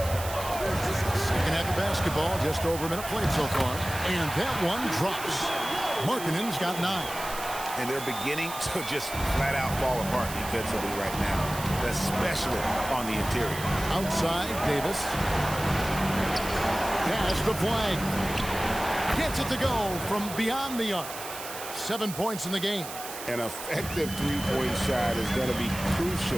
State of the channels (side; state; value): right; noise; hiss, 10 dB below the sound